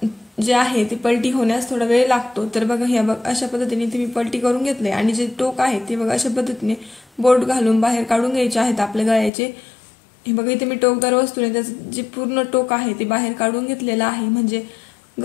जे आहे ते पलटी होण्यास थोडा वेळ लागतो। तर बघा ह्या अशा पद्धतीने इथे मी पलटी करून घेतले आणि जे टोक आहे ते बघा अशा पद्धतीने बोट घालून बाहेर काढून घ्यायचे आहेत आपल्या गळ्याचे। हे बघा इथे मी टोकदार वस्तूने त्याचं जे पूर्ण टोक आहे ते बाहेर काढून घेतलेलं आहे, म्हणजे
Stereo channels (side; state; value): right; drops out; at 9.3 s